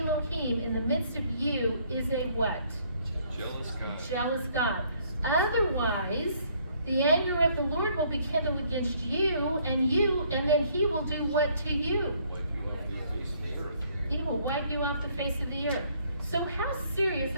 in the midst of you is a what? Jealous God. Jealous God. Otherwise, the anger of the Lord will be kindled against you, and then he will do what to you? Wipe you off the face of the earth. He will wipe you off the face of the earth. So how serious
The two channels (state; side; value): inverted; both; correlation -0.64